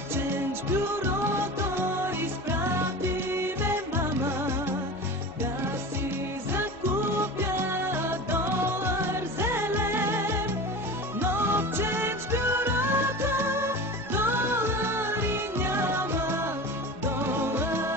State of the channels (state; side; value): normal; both; correlation 0.32